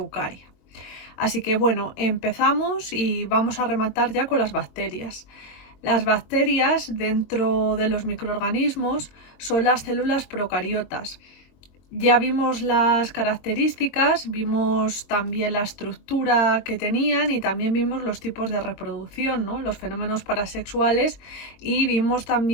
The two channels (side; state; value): right; late; 22 ms